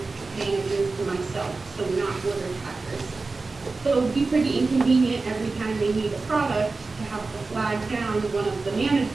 managers and myself, so not order packers. So it would be pretty inconvenient every time they need a product to have to flag down one of the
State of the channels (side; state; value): left; quieter; 3.8 dB